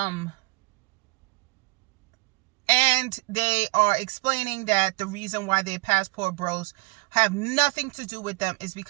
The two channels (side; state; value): left; quieter; 25.3 dB